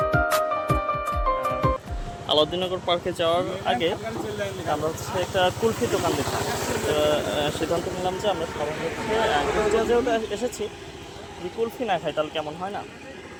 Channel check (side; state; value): both; identical; correlation 1.00